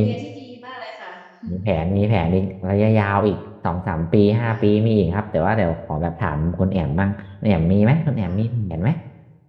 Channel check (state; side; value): identical; both; correlation 1.00